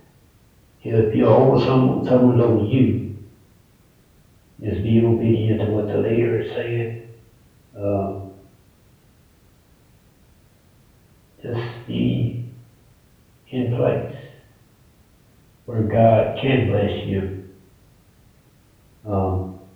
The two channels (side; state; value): both; identical; correlation 1.00